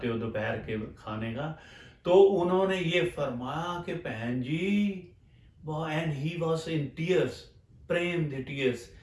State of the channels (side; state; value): both; identical; correlation 1.00